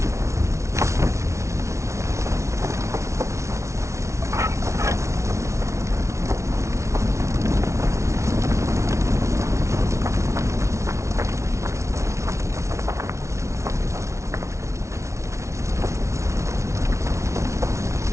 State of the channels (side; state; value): left; late; 0.14 ms